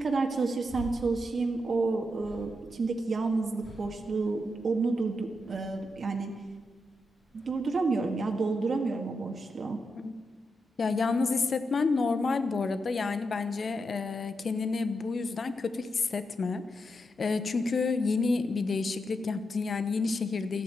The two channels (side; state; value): both; normal; correlation 0.84